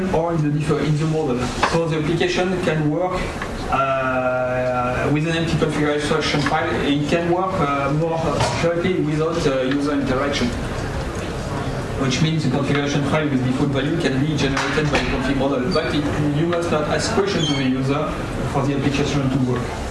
or in the model. So the application can work with an empty configuration file, it can work more accurately without user interaction. Which means the configuration file with default value can be generated by the config model, but you must not ask questions to the user for the application to work.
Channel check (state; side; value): identical; both; correlation 1.00